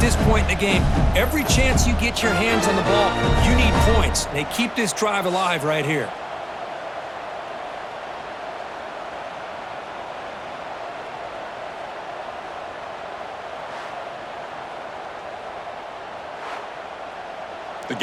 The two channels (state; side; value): identical; both; correlation 1.00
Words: this point in the game. Every chance you get your hands on the ball, you need points. They keep this drive alive right here. The